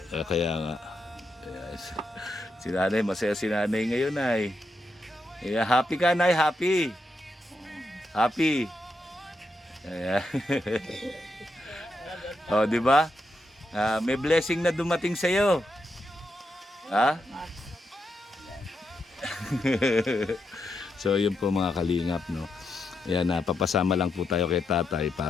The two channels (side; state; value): both; normal; correlation 0.84